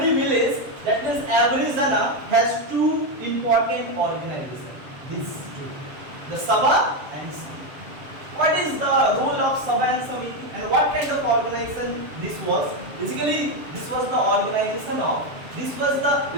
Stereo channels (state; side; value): late; left; 7.2 ms